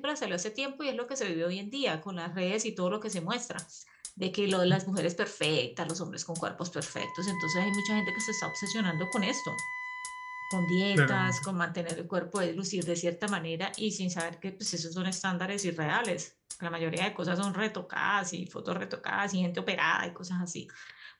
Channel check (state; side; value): identical; both; correlation 1.00